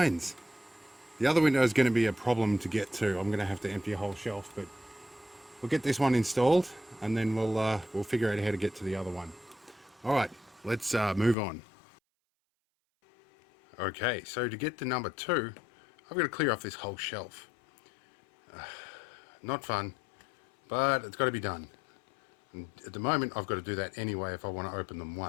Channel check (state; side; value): drops out; right; at 11.4 s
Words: The other window is going to be a problem to get to. I'm going to have to empty a whole shelf, but we'll get this one installed and then we'll figure out how to get to the other one. Alright, let's move on. Okay, so to get to number 2, I've got to clear off this whole shelf. Not fun, but it's got to be done. And at the moment I've got to do that anyway if I want to open them